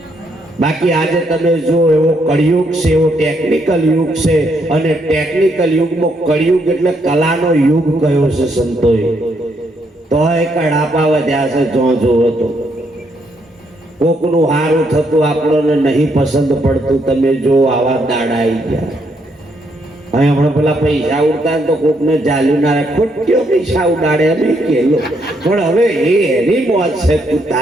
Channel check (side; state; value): both; normal; correlation 0.75